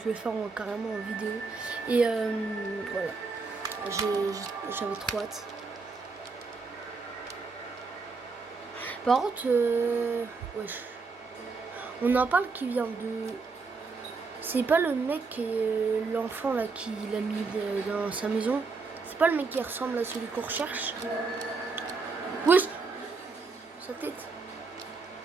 vais faire carrément en vidéo. Et voilà. J'avais trop hâte. Par contre, wesh. On en parle qui vient de... C'est pas le mec, l'enfant là qui l'a mis dans sa maison. C'est pas le mec qui ressemble à celui qu'on recherche. Wesh. Sa tête.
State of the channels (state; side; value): quieter; left; 4.4 dB